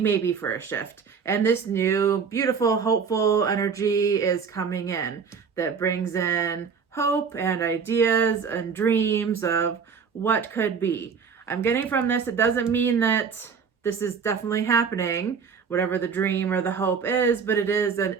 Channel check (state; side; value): quieter; left; 6.1 dB